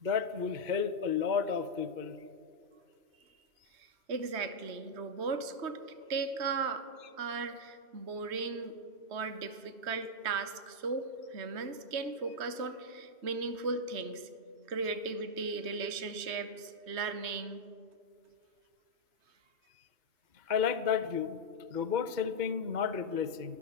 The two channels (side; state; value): left; late; 3.2 ms